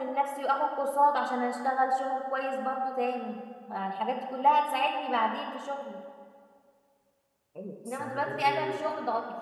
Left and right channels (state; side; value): identical; both; correlation 1.00